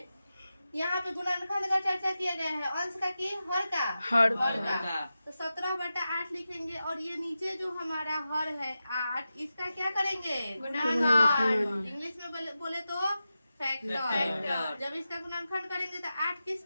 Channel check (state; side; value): inverted; both; correlation -0.92